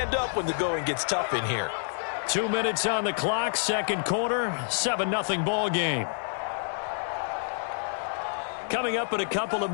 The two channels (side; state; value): right; silent; digital silence